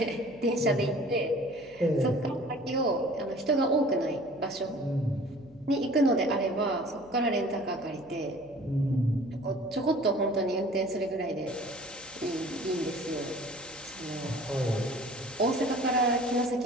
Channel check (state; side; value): noise; right; hum, 27 dB below the sound